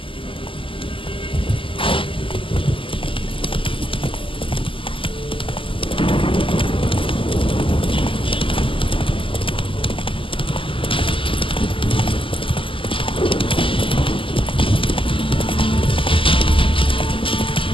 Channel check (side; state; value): right; late; 0.25 ms